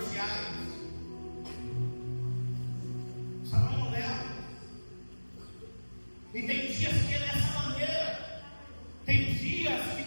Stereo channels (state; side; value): inverted; both; correlation -1.00